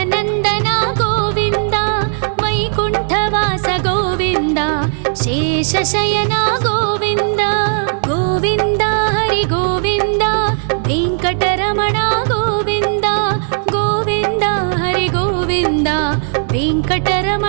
गोविन्द वैकुण्ठवास गोविन्द शेषशयन गोविन्द गोविन्द हरि गोविन्द वेङ्कटरमण गोविन्द गोविन्द हरि गोविन्द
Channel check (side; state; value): left; silent; digital silence